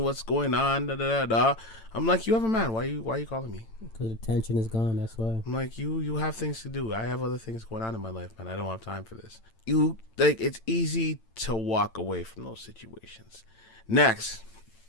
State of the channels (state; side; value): late; right; 8.9 ms